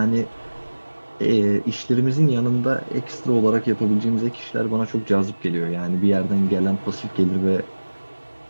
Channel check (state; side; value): inverted; both; correlation -1.00